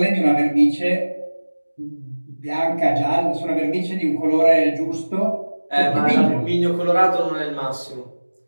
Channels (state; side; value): inverted; both; correlation -1.00